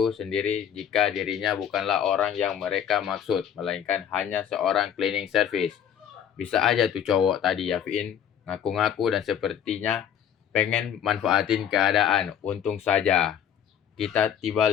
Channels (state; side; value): quieter; right; 9.0 dB